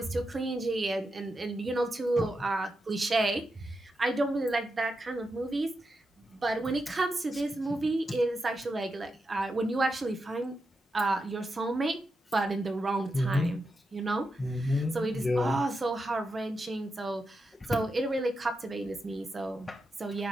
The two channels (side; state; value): both; normal; correlation 0.87